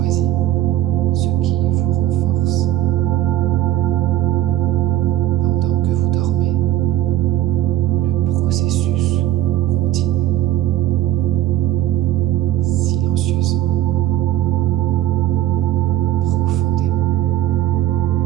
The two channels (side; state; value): left; quieter; 13.6 dB